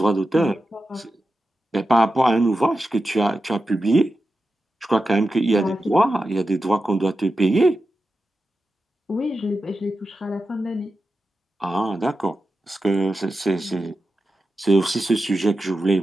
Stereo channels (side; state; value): both; normal; correlation 0.91